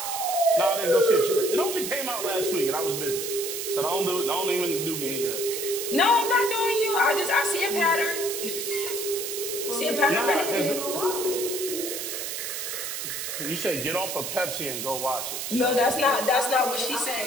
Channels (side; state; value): right; noise; hiss, 4 dB below the sound